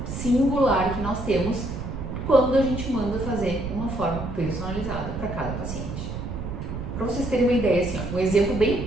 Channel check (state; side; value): noise; right; rumble, 6 dB below the sound